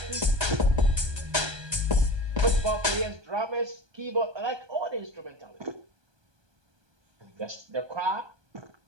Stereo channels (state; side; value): late; left; 1.2 ms